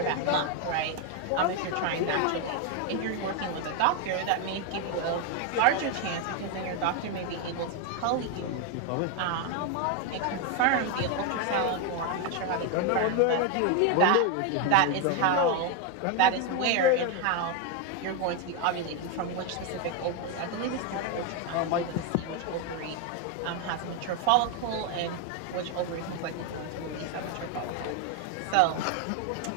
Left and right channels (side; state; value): both; different; correlation 0.01